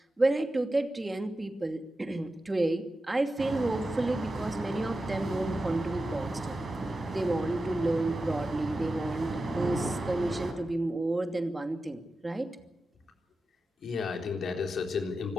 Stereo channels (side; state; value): both; normal; correlation 0.92